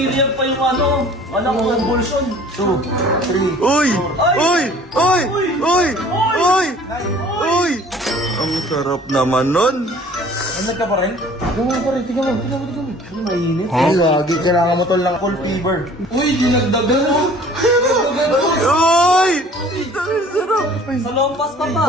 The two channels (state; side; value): normal; both; correlation 0.50